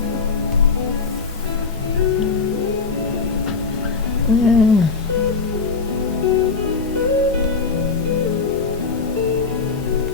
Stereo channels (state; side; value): quieter; right; 4.7 dB